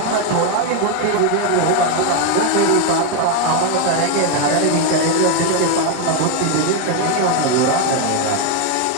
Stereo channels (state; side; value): different; both; correlation 0.01